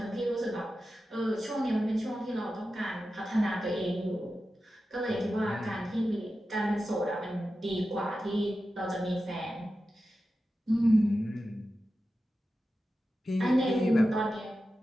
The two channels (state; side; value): normal; both; correlation 0.92